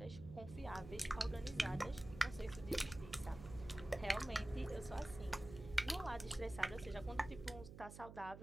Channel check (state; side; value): noise; right; hum, 12 dB below the sound